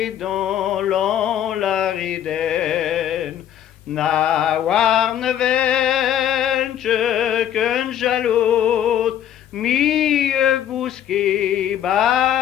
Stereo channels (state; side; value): quieter; right; 10.5 dB